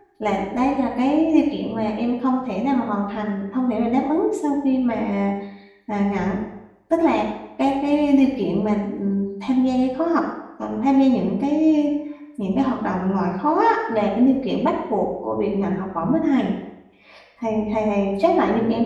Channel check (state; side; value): identical; both; correlation 1.00